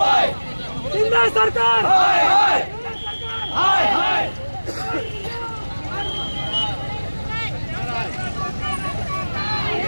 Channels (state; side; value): inverted; both; correlation -1.00